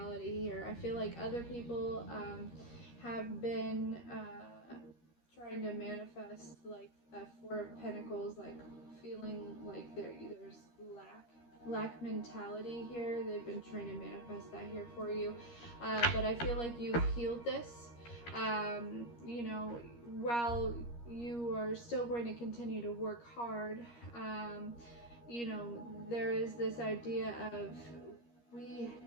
here. I feel like other people have been trying to manifest like a 4 of Pentacles, like feeling like there's lack mentality here. They've been trying to manifest that here for you, but I feel like you've healed this. While you are still going to continue to work hard, there is this idea of we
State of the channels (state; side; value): late; right; 13 ms